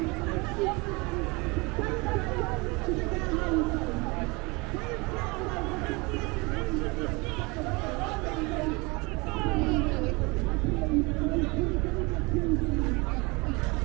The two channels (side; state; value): left; quieter; 26.6 dB